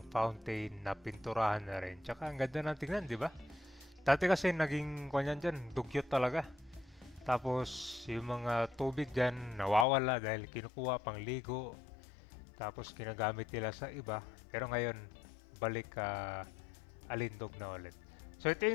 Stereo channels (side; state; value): right; drops out; at 9.9 s